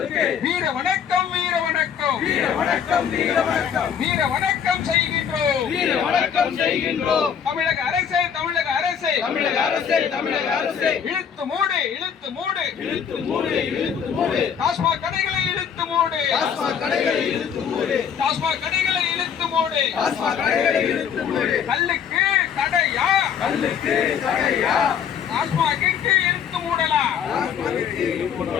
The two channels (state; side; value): quieter; right; 7.8 dB